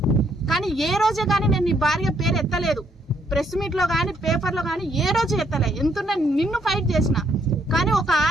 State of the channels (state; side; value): normal; both; correlation 0.71